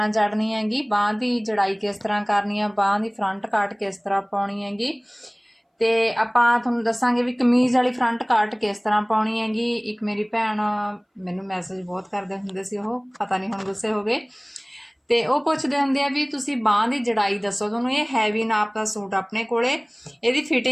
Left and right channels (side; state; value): both; identical; correlation 1.00